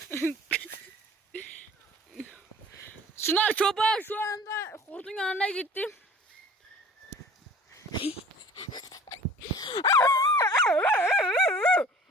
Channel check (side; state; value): both; normal; correlation 0.46